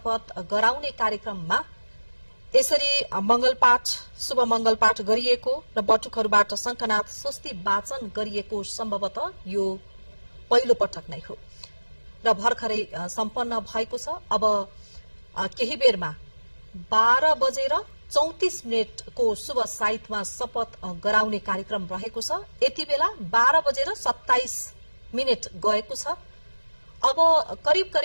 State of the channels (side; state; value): both; inverted; correlation -1.00